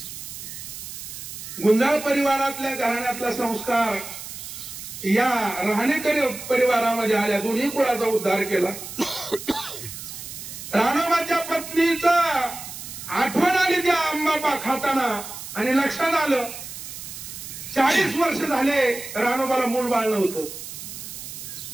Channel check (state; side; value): noise; right; hiss, 10 dB below the sound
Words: गुंजाळ परिवारातल्या घराण्यातला संस्कार या राहणेकरी परिवारामध्ये आल्या. दोन्ही कुळाचा उद्धार केला. रानोबाच्या पत्नीचा आठवण आली त्या आंबा खाताना आणि लक्षात आलं 40 वर्ष झाले रानोबाला मूल बाळ नव्हतं